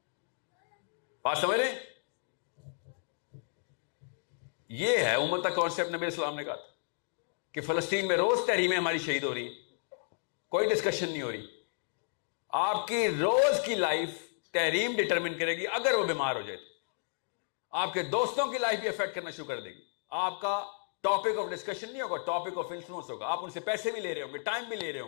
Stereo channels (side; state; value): right; silent; digital silence